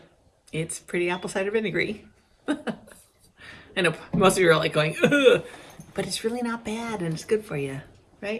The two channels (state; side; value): identical; both; correlation 1.00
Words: it's pretty apple cider vinegary. I know most of you are like going, ugh, but it's really not bad, and it's good for you,